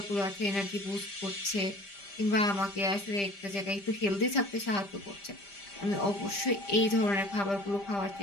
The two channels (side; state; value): right; late; 5.0 ms